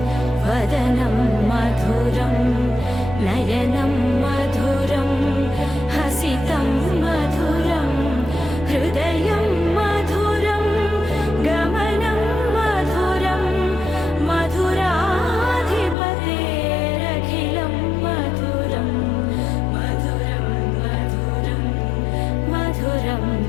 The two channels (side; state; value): right; drops out; at 16.0 s